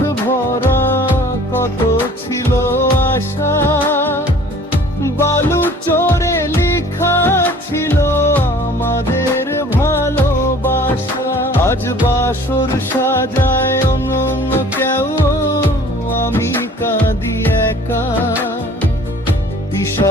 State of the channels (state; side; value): normal; both; correlation 0.50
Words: ভরা, কত ছিল আশা বালু চোরে লেখা ছিল আমাদের ভালোবাসা। আজ বাসর সাজায় অন্য কেউ, আমি কাঁদি একা।